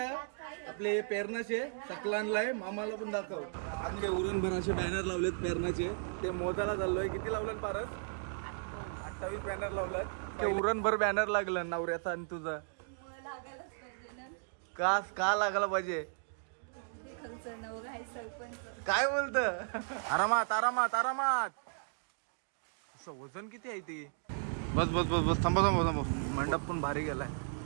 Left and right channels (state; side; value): silent; left; digital silence